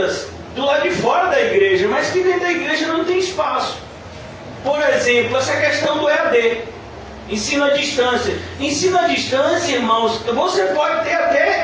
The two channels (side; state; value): both; identical; correlation 1.00